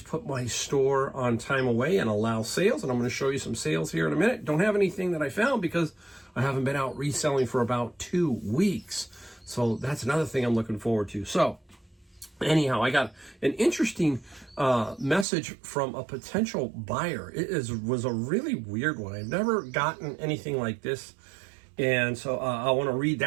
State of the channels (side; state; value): left; drops out; at 15.2 s